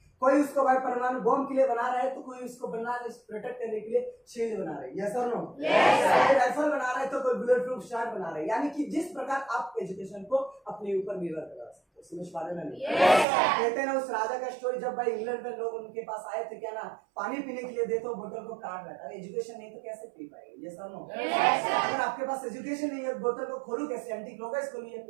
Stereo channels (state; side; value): drops out; left; at 13.2 s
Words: कोई उसको भाई परमाणु बम के लिए बना रहा है तो कोई उसको प्रोटेक्ट करने के लिए शील्ड बना रहे हैं। यस और नो? कोई राइफल बना रहा है तो कोई बुलेट प्रूफ शॉट बना रहे हैं। यानी कि जिस प्रकार आप एजुकेशन को अपने ऊपर निर्भर करा सकते हो। समझ पा रहे ना? कहते हैं ना उस राजा का स्टोरी, जब भाई इंग्लैंड में लोग उनके पास आए थे क्या ना पानी पीने के लिए दे तो बोतल को काट रहा था। एजुकेशन नहीं तो कैसे पी पाएंगे? यस और नो? अगर आपके पास एजुकेशन नहीं है बोतल को खोलू कैसे? एंटी क्लॉकवाइज खोलिए,